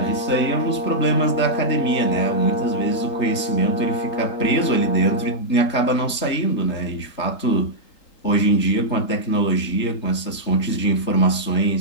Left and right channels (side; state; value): right; late; 3.8 ms